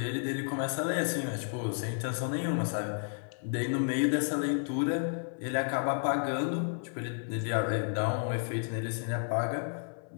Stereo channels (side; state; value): right; silent; 56 dB below the other